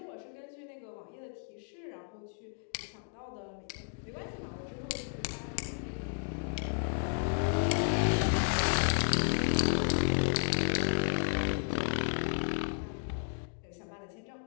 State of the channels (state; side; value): silent; right; digital silence